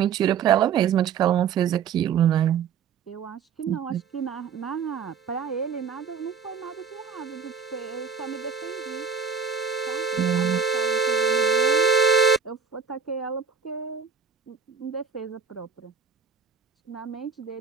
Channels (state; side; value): quieter; left; 6.4 dB